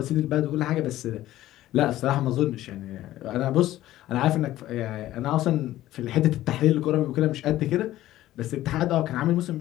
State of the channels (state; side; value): quieter; right; 14.7 dB